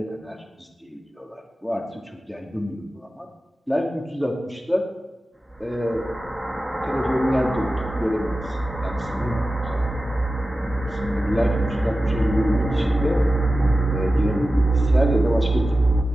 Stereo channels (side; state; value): both; normal; correlation 0.94